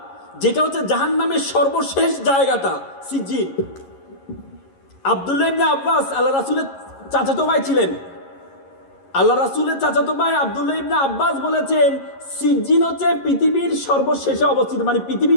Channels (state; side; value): late; right; 11 ms